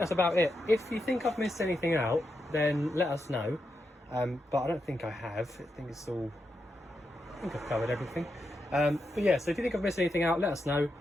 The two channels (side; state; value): both; normal; correlation 0.85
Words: about it. If you think I've missed anything out, then let us know. But I don't think I have. I think I've covered everything. But yeah, so if you think I've missed anything out, let us know.